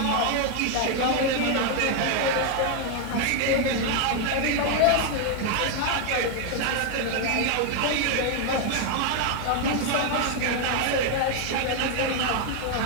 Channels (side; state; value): both; different; correlation 0.01